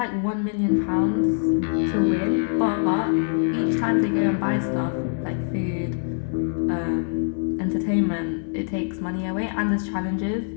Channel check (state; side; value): silent; right; digital silence